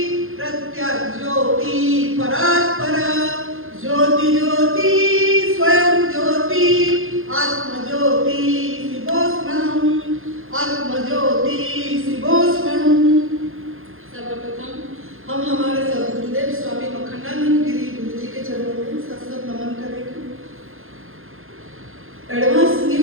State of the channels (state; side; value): late; left; 0.60 ms